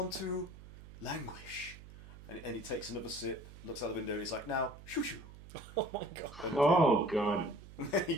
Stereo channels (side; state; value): right; noise; hum, 17 dB below the sound